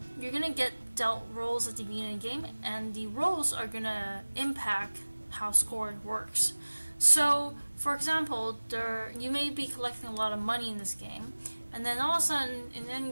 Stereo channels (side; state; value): both; inverted; correlation -1.00